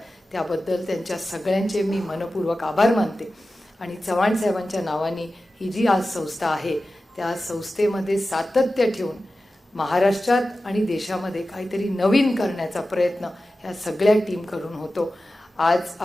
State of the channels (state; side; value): normal; both; correlation 0.94